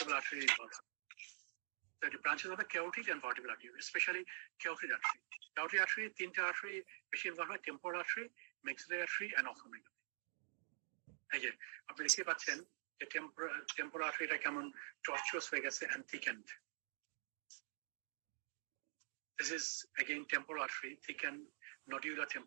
আর্টারি ইনভলভ। তো এটা ব্রাঞ্চেস হবে carotid and vertebral artery, specially carotid artery. Carotid artery তিনটা আর্টারি বেশি ইনভলভ হয়, temporal artery, maxillary artery and ophthalmic. এই যে আপনি দেখতে পাচ্ছেন যে টেম্পোরাল আর্টারিটা কেমন টর্চুয়াস হয়ে গেছে and thickened. This is again temporal artery, thickened nodular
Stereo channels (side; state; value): left; silent; digital silence